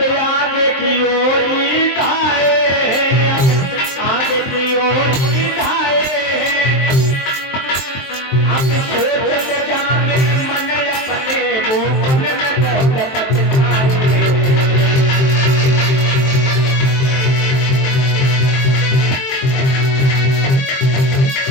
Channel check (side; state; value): right; late; 23 ms